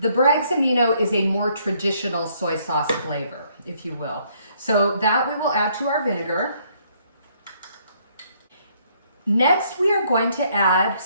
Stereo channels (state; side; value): inverted; both; correlation -0.67